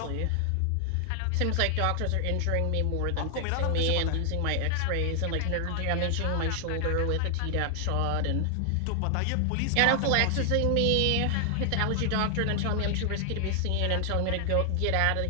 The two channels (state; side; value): different; both; correlation 0.00